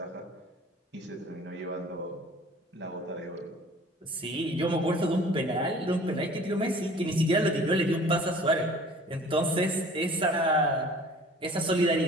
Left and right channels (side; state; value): both; normal; correlation 0.48